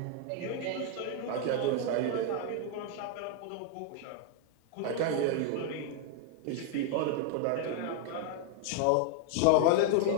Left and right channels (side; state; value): both; different; correlation 0.00